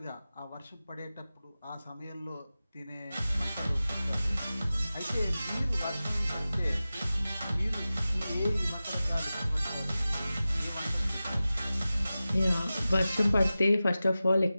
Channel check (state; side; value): inverted; both; correlation -0.95